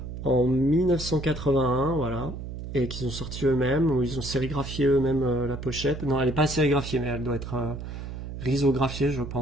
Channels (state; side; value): noise; right; hum, 8 dB below the sound